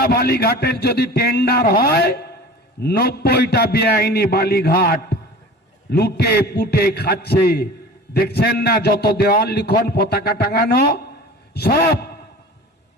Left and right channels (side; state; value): both; normal; correlation 0.39